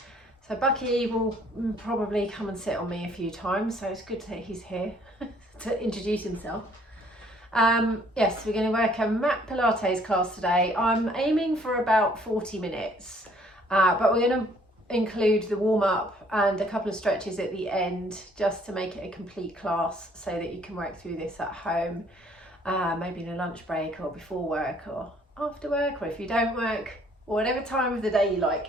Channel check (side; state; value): both; normal; correlation 0.61